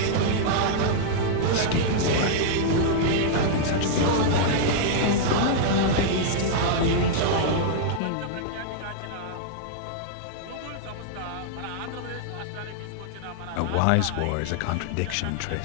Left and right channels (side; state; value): both; different; correlation -0.01